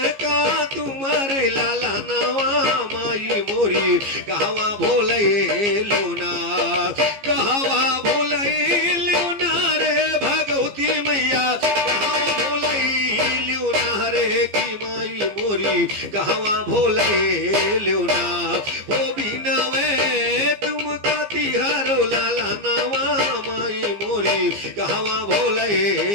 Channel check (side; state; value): left; late; 15 ms